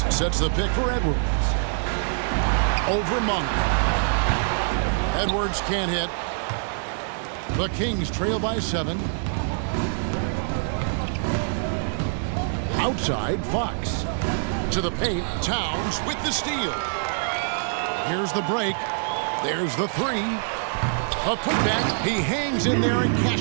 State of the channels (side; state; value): left; silent; digital silence